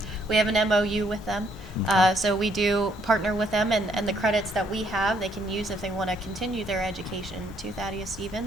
We have an MOU with them. So we do partner with them, and the credits that we have, they can use if they want to continue their education to Thaddeus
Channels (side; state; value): both; normal; correlation 0.69